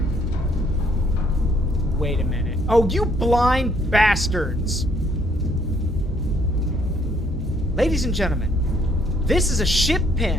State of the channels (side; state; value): both; normal; correlation 0.67